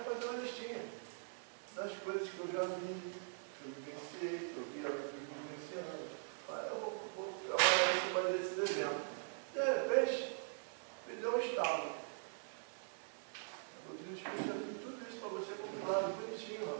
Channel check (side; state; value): left; silent; digital silence